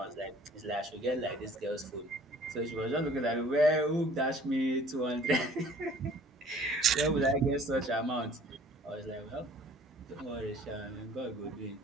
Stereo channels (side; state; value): both; normal; correlation 0.53